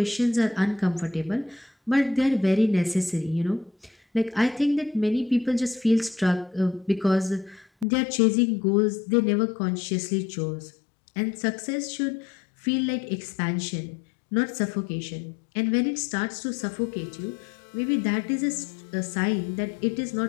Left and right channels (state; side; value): drops out; right; at 7.9 s